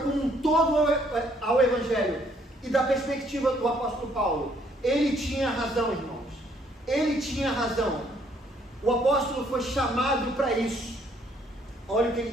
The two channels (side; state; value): both; normal; correlation 0.66